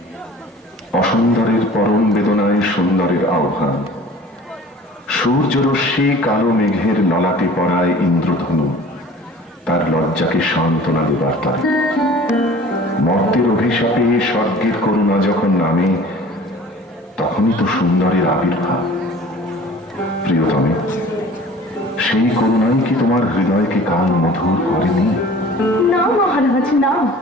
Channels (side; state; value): both; normal; correlation 0.45